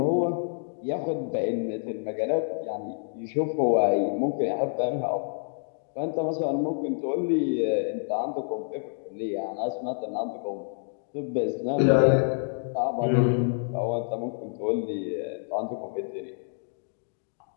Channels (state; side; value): silent; right; digital silence